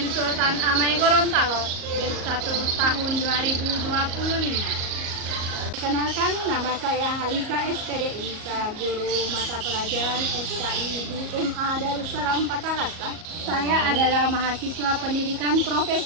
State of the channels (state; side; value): late; left; 38 ms